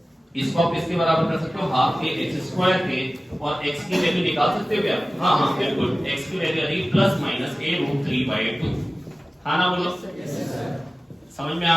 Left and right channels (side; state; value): both; normal; correlation 0.97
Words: इसको आप इसके बराबर कर सकते हो हाफ के x स्क्वायर के, और x की वैल्यू निकाल सकते हो क्या? हाँ बिल्कुल, x की वैल्यू आ रही प्लस माइनस a√3/2। हाँ ना बोलो? समझ में